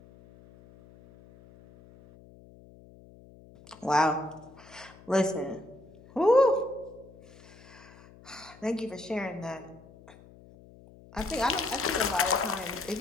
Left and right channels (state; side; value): noise; left; hum, 23 dB below the sound